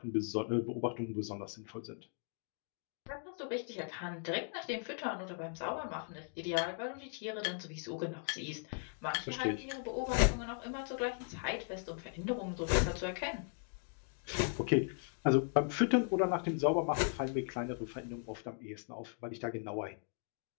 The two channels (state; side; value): silent; right; 52 dB below the other